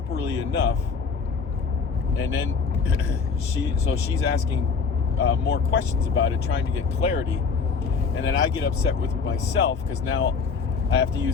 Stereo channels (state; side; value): quieter; right; 5.3 dB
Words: enough. And then she's asking more questions about it, trying to get clarity. And then I get upset with myself because now I have to